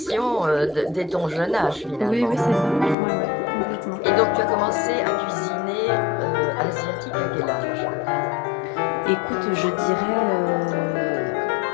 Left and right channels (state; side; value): drops out; right; at 3.0 s